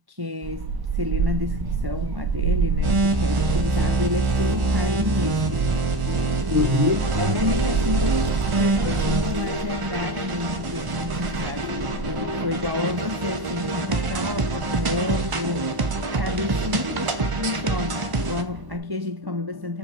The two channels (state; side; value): late; left; 1.0 ms